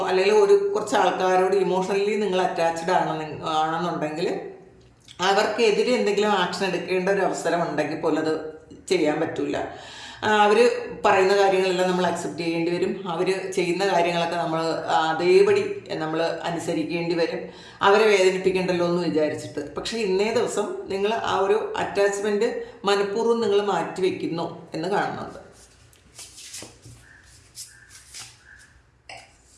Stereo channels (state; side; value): identical; both; correlation 1.00